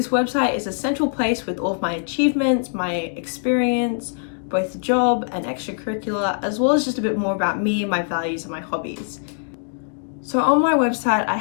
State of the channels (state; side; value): silent; right; digital silence